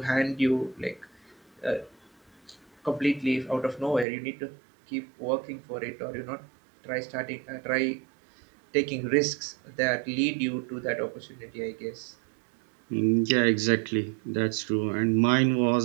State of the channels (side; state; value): left; drops out; at 4.0 s